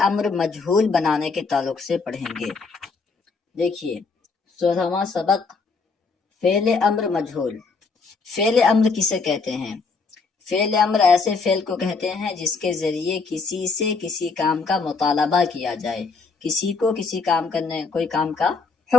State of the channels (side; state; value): right; quieter; 4.5 dB